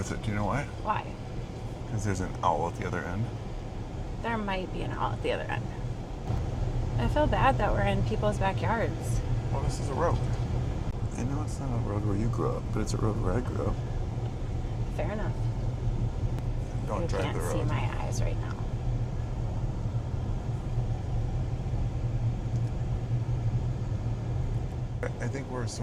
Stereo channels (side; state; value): both; identical; correlation 1.00